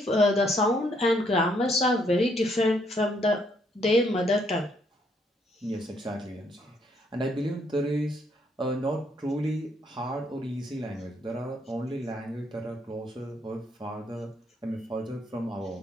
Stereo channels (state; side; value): normal; both; correlation 0.71